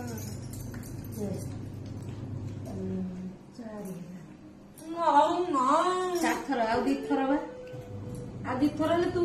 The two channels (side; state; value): both; identical; correlation 1.00